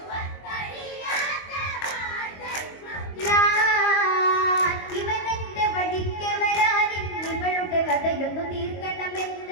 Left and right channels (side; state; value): right; late; 22 ms